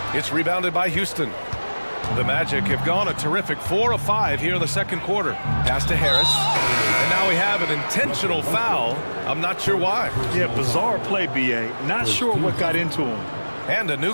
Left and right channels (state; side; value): inverted; both; correlation -1.00